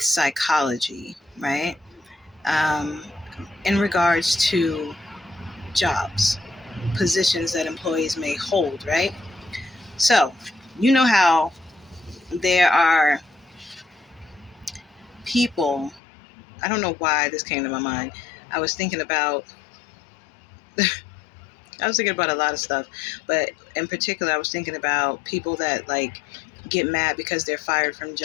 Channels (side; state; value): right; drops out; at 16.0 s